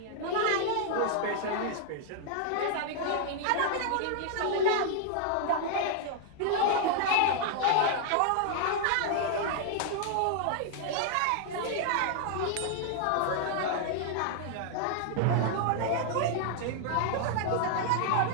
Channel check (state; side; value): different; both; correlation -0.01